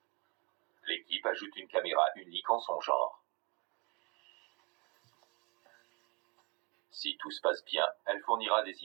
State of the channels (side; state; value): left; quieter; 30.0 dB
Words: L'équipe ajoute une caméra unique en son genre. Si tout se passe bien, elle fournira des